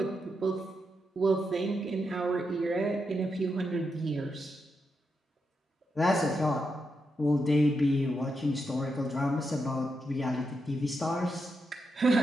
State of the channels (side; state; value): both; normal; correlation 0.84